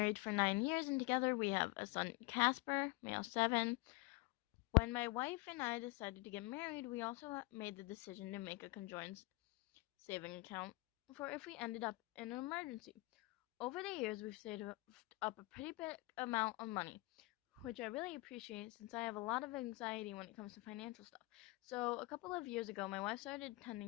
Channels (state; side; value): quieter; right; 22.9 dB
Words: for 9 years, and together we have a son, Casper, male 7. When my wife and I decided to get married, we also made the decision to make a conjoined saving account for if we ended up in an emergency. Over the years, we've saved up a pretty big amount of money, which I really appreciate since I have a lot of anxiety when it comes to financial stuff. So, a couple of years ago, my wife started